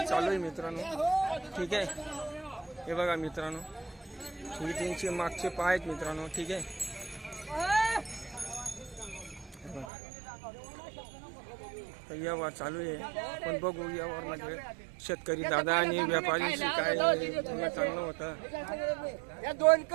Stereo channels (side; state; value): left; drops out; at 9.9 s